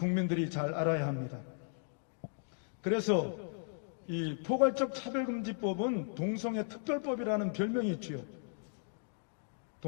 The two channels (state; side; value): silent; right; digital silence